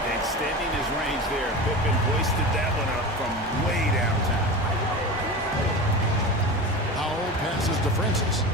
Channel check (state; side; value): normal; both; correlation 0.29